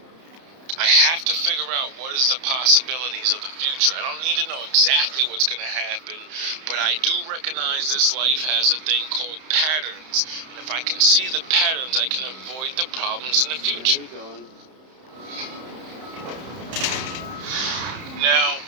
I have to figure out what is the possibilities of the future. I don't need to know exactly what's going to happen, but I do recognize this life has a thing called patterns. And if I can see the patterns, I can avoid the problems in the future. Now,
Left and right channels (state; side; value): late; left; 31 ms